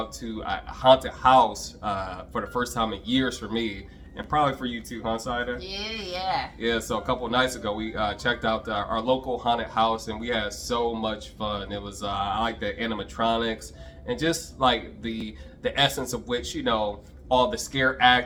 to a haunted house for the first time in years for me, and probably for you too, huh, Sahida? Yeah. So a couple of nights ago, we checked out our local haunted house, and we had so much fun. It was I like the animatronics and just like the essence of which, you know, all the scare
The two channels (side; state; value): both; identical; correlation 1.00